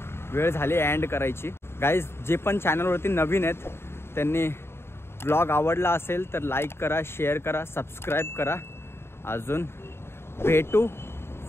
वेळ झाली एंड करायची. गाईज जे पण चॅनलवरती नवीन आहेत त्यांनी ब्लॉग आवडला असेल तर लाईक करा, शेअर करा, सबस्क्राईब करा. अजून भेटू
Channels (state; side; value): late; right; 0.12 ms